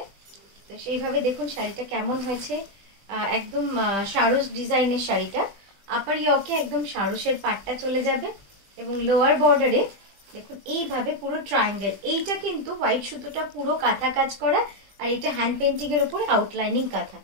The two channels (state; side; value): late; left; 20 ms